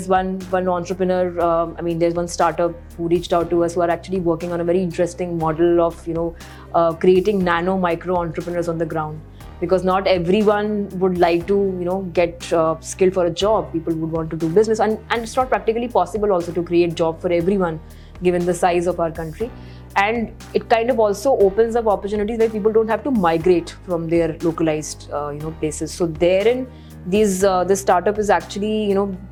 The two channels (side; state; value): both; identical; correlation 1.00